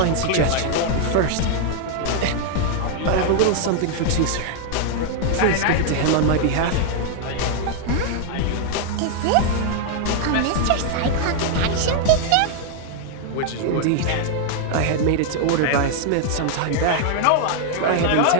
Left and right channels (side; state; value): both; different; correlation 0.00